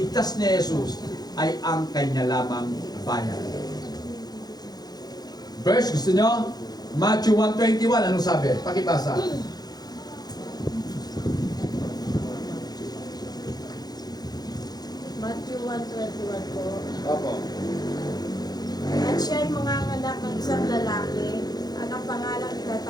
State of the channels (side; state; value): right; late; 0.19 ms